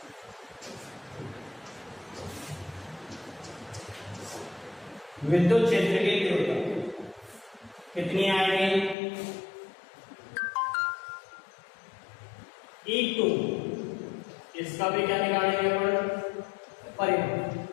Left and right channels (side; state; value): right; drops out; at 9.0 s